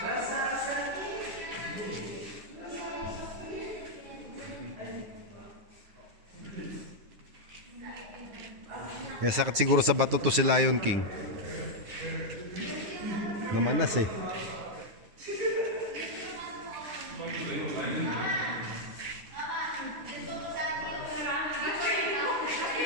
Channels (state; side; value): late; left; 10 ms